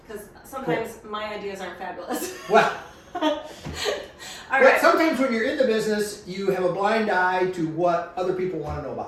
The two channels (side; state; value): both; identical; correlation 1.00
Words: Because sometimes my ideas aren't fabulous. Well, All but right. sometimes when you're in the business, you have a blind eye to what other people want to know